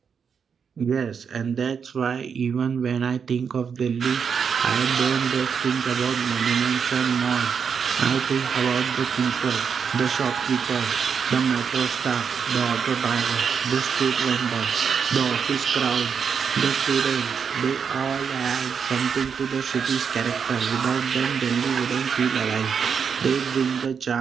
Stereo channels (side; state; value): left; quieter; 6.6 dB